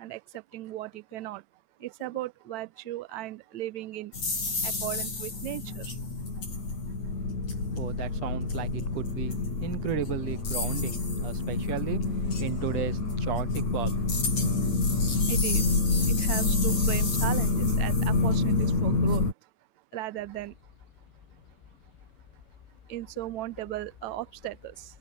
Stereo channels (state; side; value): late; right; 9.0 ms